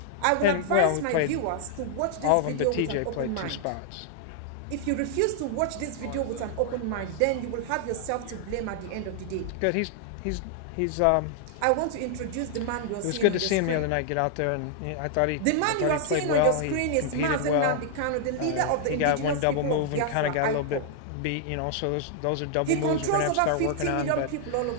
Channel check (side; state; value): both; different; correlation -0.01